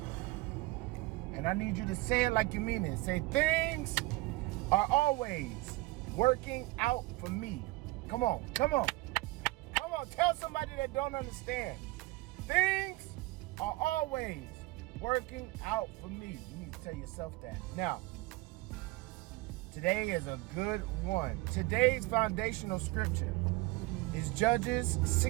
and I need you to say it like you mean it. Say, things are always working out for me. Come on. Tell somebody that don't understand. Things are always working out for me. You need to tell yourself that. Now, today is a good one. Today's foundational scripture is Judges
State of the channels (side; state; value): left; quieter; 21.1 dB